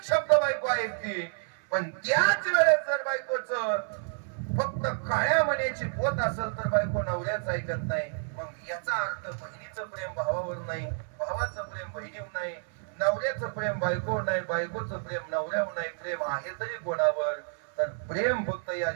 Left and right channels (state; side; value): silent; left; 58 dB below the other